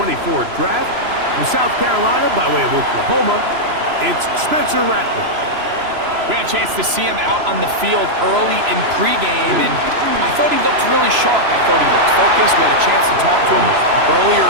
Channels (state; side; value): late; left; 3.0 ms